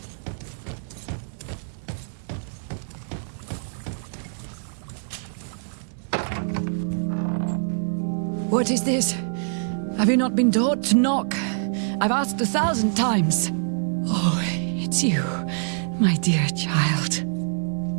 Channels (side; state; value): left; silent; 62 dB below the other